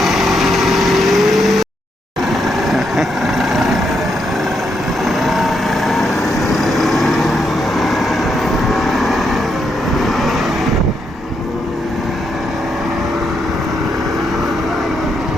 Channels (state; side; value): normal; both; correlation 0.80